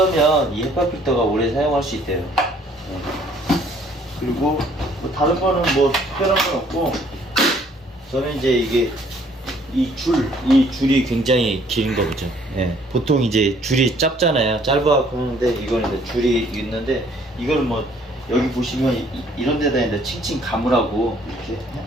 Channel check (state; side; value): normal; both; correlation 0.61